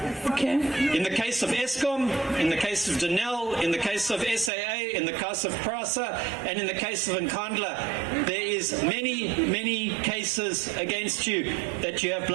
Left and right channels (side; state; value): left; drops out; at 4.5 s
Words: Okay. In the case of Eskom, in the case of Denel, in the case of SAA, in the case of Prasa, and in the case of Nkandla, there is many cases against you that you have